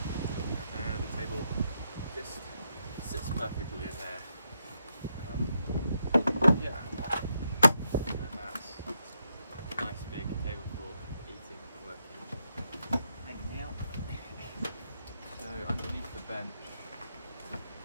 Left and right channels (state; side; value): inverted; both; correlation -0.81